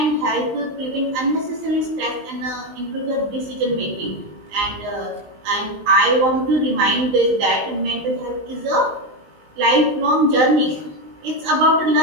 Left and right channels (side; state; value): left; late; 19 ms